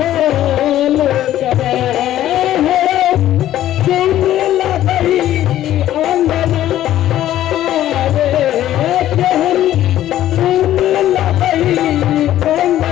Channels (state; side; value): quieter; right; 12.9 dB